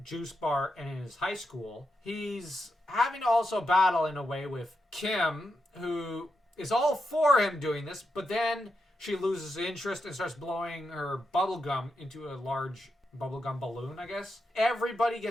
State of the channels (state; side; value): normal; both; correlation 0.86